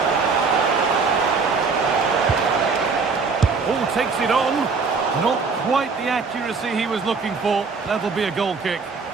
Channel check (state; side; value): quieter; left; 4.8 dB